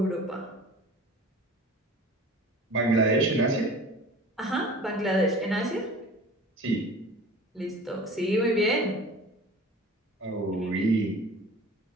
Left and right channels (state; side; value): normal; both; correlation 0.41